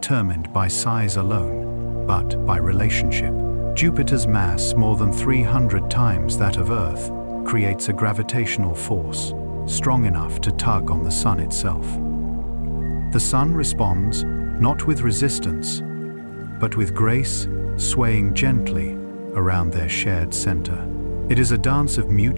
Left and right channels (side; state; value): both; inverted; correlation -1.00